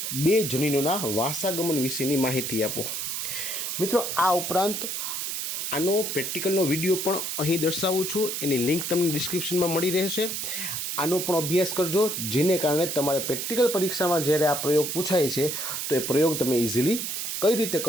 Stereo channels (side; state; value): right; noise; hiss, 3 dB below the sound